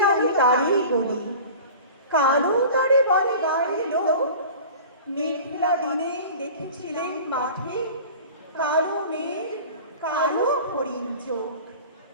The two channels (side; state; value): both; inverted; correlation -0.39